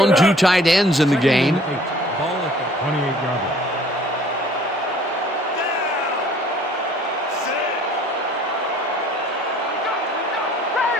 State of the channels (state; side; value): normal; both; correlation 0.54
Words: 2 tight ends in the game. Ball at the 28-yard line.